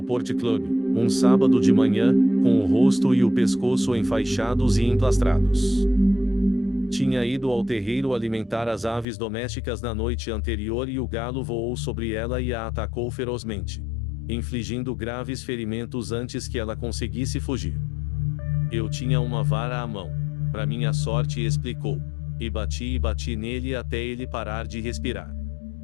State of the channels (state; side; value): drops out; right; at 9.1 s